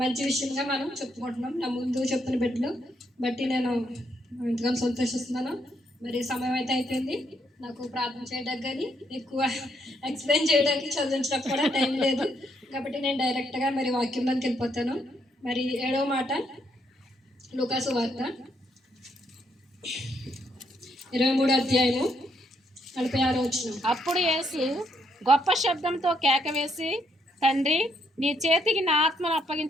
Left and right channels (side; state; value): both; normal; correlation 0.74